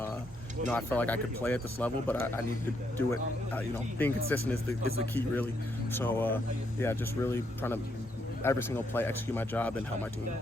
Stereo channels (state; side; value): normal; both; correlation 0.76